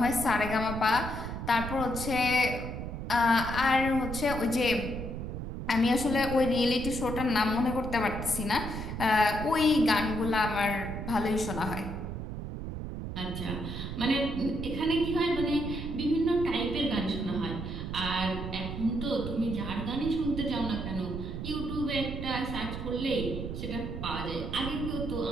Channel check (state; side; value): noise; right; rumble, 6 dB below the sound